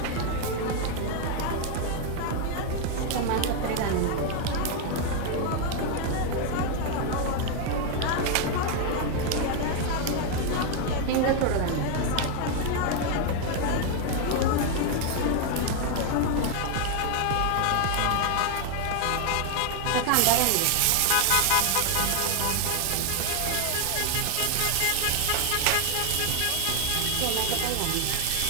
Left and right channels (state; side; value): different; both; correlation 0.00